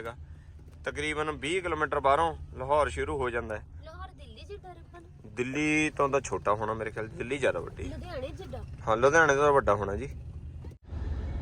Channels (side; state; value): both; identical; correlation 1.00